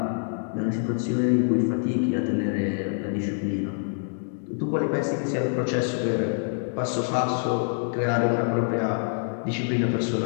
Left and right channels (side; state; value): right; silent; digital silence